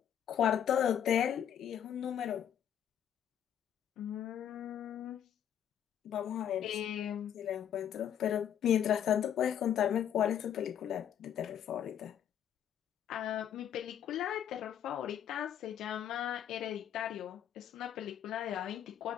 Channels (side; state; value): right; quieter; 9.7 dB